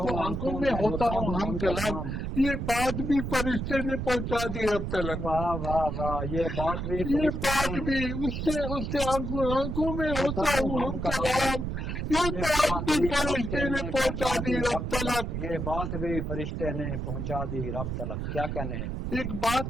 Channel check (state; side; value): noise; right; rumble, 3 dB below the sound